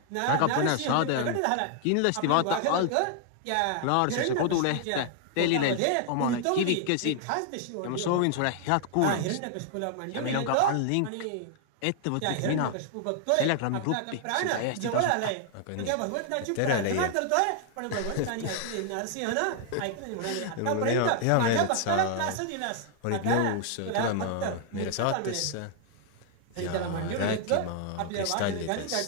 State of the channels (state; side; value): different; both; correlation 0.00